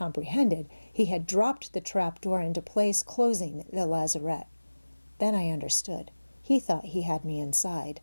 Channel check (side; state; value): both; inverted; correlation -1.00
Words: he had dropped the trap door into place, closing the lazarette. Then I understood. He thought he had me inside.